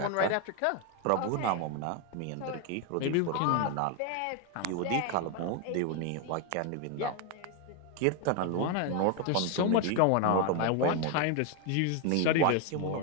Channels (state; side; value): different; both; correlation 0.01